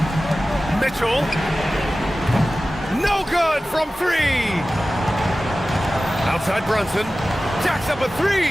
Mitchell. No good from three. Outside Brunson. Jacks up a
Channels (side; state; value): both; normal; correlation 0.96